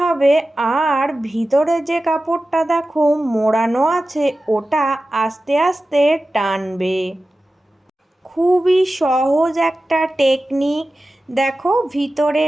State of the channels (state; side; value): normal; both; correlation 0.94